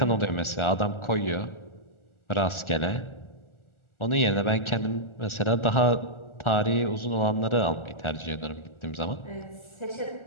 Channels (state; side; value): late; right; 1.4 ms